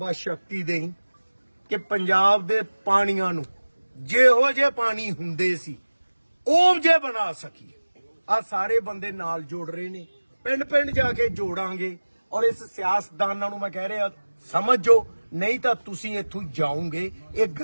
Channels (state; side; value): inverted; both; correlation -1.00